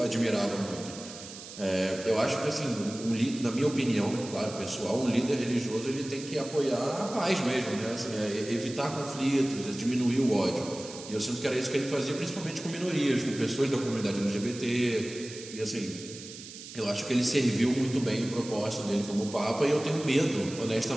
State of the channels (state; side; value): noise; right; hiss, 13 dB below the sound